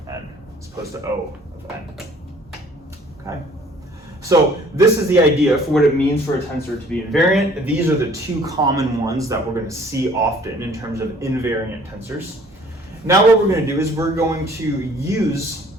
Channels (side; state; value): both; normal; correlation 0.55